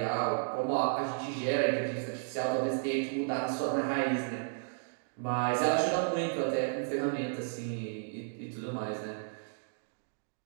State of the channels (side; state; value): left; silent; digital silence